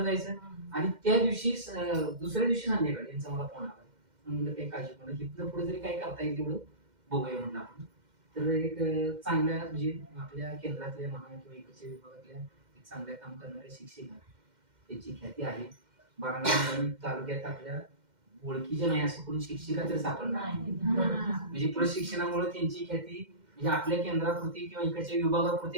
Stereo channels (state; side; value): late; left; 2.1 ms